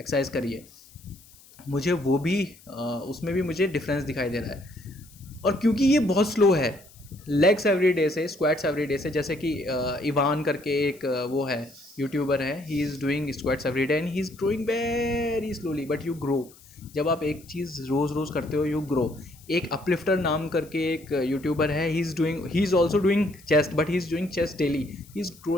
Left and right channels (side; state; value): left; noise; hiss, 24 dB below the sound